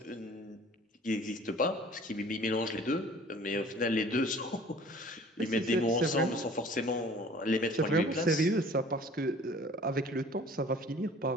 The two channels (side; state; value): both; normal; correlation 0.49